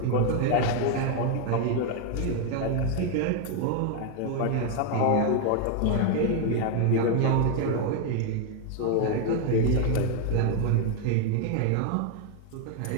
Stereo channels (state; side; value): different; both; correlation 0.01